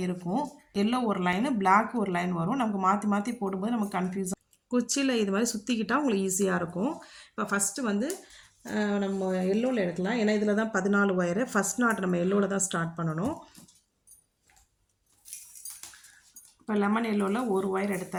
இருக்கும். எல்லோ ஒரு லைனு, பிளாக் ஒரு லைன் வரும். நமக்கு மாற்றி மாற்றி போடும்போது நமக்கு கன்ஃபியூஸாக, குச்சியில் இது மாதிரி சுற்றிக்கிட்டால் உங்களுக்கு ஈஸியாக இருக்கும். இப்போ ஃபஸ்ட்டு வந்து நம்ம எல்லோவில் எடுக்கலாம். ஏன்னா இதில் தான் 14 ஒயரு. ஃபஸ்ட் நாட் நம்ம எல்லோவில் தான் ஸ்டார்ட் பண்ணணும். இப்போ லெமன் எல்லோவில் ஒரு ஒயர்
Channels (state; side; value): identical; both; correlation 1.00